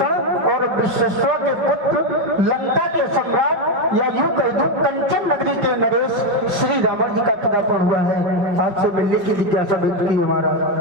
और विश्वेश्वर के पुत्र, लंका के सम्राट, या यूं कह दूं कंचन नगरी के नरेश श्री रावण जी का पदार्पण हुआ है। आपसे मिलने की जिज्ञासा व्यक्त की हमारा।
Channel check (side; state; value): left; late; 5.4 ms